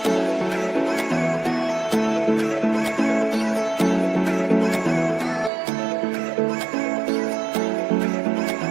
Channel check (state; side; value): drops out; left; at 5.5 s